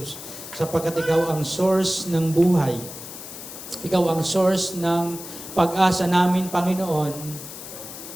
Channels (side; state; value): left; noise; hiss, 12 dB below the sound